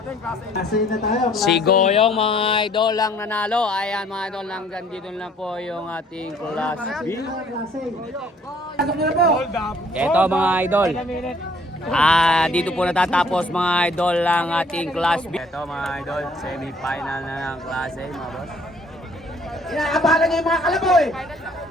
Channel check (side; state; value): both; normal; correlation 0.60